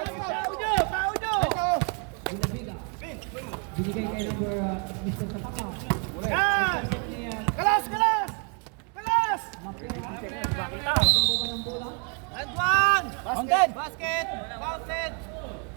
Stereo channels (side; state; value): left; quieter; 37.1 dB